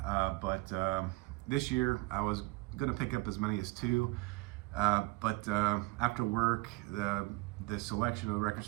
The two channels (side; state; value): left; quieter; 23.0 dB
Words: but this year I was going to pick up as many as 2, but after work, the selection of the record